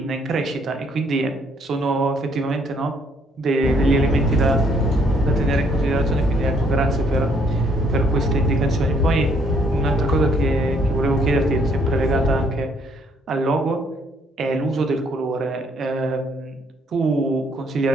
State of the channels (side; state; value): both; normal; correlation 0.67